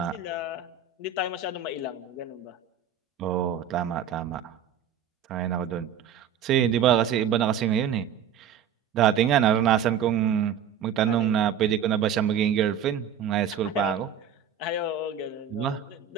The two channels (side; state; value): left; quieter; 8.0 dB